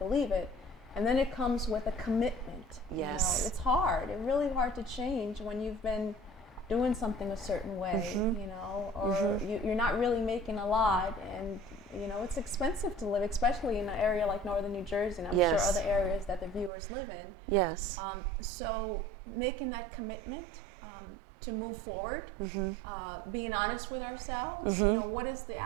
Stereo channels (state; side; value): drops out; left; at 16.7 s